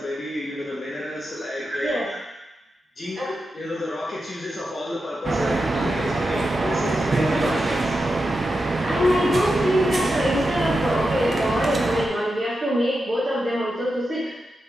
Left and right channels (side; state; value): both; normal; correlation 0.89